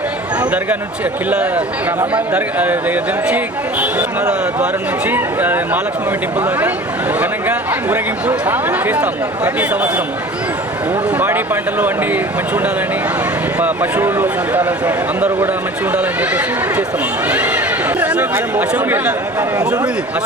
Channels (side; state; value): both; normal; correlation 0.41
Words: దర్గా నుంచి ద్వారం నుంచి మహాలక్ష్మి టెంపుల్ దాకా ఘనంగా ఊరేగింపు చేస్తాము ప్రతి సంవత్సరం. పాడి పంటలు అన్నీ మంచిగా ఉండాలని, పశువులు అందరూ కూడా మంచిగా ఉండాలని చెప్పేసి చేస్తాము.